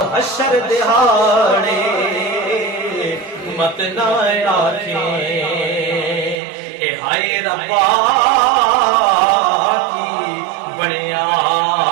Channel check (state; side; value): drops out; left; at 6.4 s